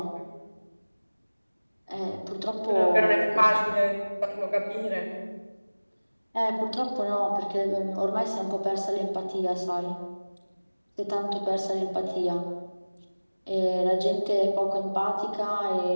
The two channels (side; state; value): both; inverted; correlation -1.00